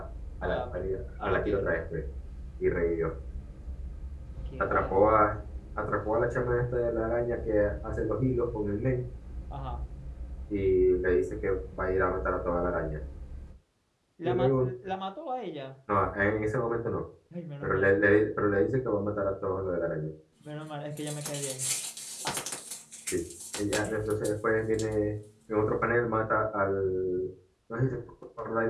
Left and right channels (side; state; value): both; identical; correlation 1.00